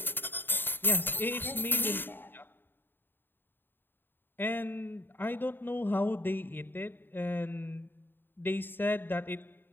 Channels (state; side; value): late; right; 0.096 ms